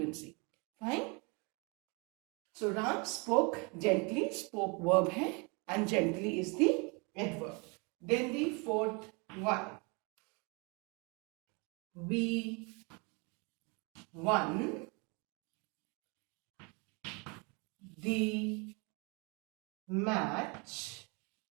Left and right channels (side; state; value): left; quieter; 31.1 dB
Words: Fine. So Ram spoke gently. Spoke verb है and gently is the adverb. Then the fourth one. We won the match